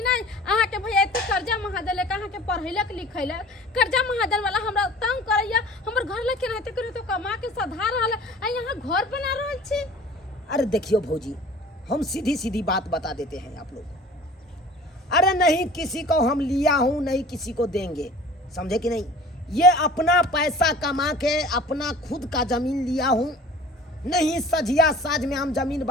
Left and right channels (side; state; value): both; normal; correlation 0.45